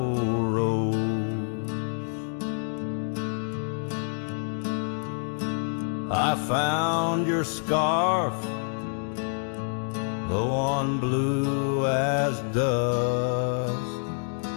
roads, I found your scarf, the one blue as dust.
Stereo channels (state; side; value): silent; right; digital silence